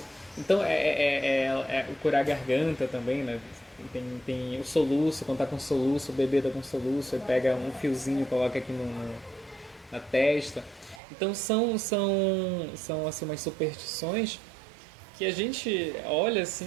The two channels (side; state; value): left; drops out; at 11.0 s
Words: Então o curar a garganta também, né? Tem o soluço, quando tá com soluço, o bebê tá com soluço, aí pega um fiozinho e coloca aqui na testa. Então são assim, umas superstições que a gente olha assim,